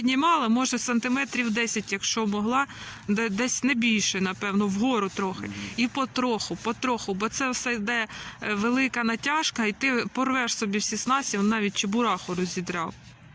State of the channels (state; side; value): identical; both; correlation 1.00